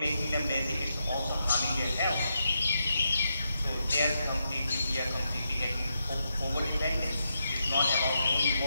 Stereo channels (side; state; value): both; inverted; correlation -0.84